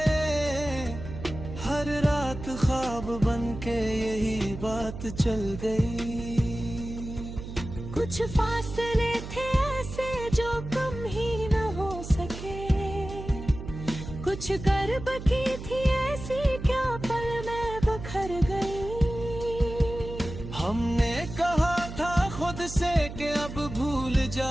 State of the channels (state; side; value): noise; right; hum, 10 dB below the sound